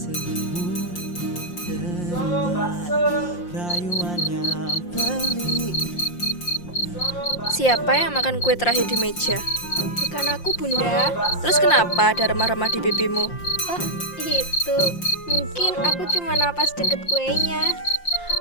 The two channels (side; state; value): right; late; 5.7 ms